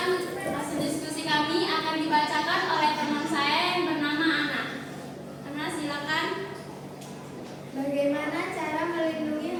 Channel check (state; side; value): identical; both; correlation 1.00